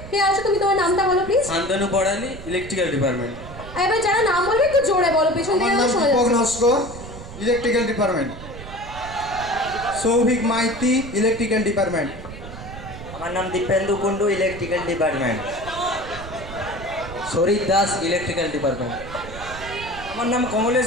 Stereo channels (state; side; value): noise; right; rumble, 13 dB below the sound